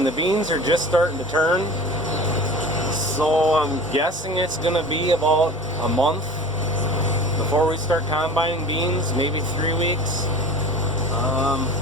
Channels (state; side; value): normal; both; correlation 0.38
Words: the beans are just starting to turn. So I'm guessing it's gonna be about a month before we start combining beans, maybe 3 weeks.